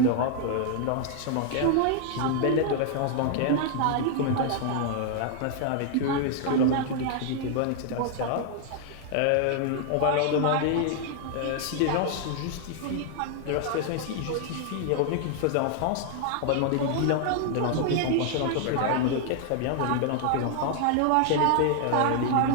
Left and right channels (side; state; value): both; different; correlation 0.00